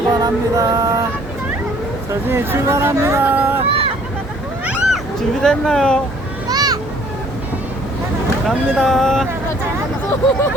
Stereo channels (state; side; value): normal; both; correlation 0.58